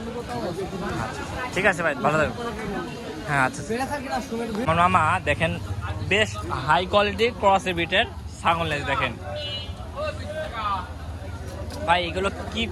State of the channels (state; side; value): identical; both; correlation 1.00